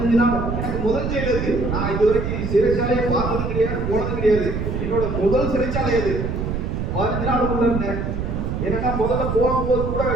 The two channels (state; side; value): noise; right; rumble, 2 dB below the sound